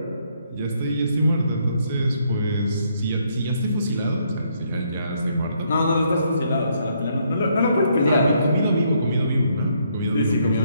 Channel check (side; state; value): both; inverted; correlation -0.72